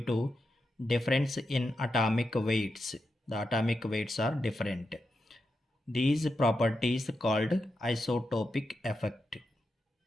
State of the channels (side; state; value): both; normal; correlation 0.87